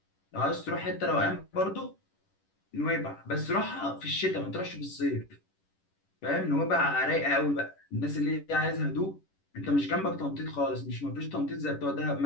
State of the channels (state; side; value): late; right; 10 ms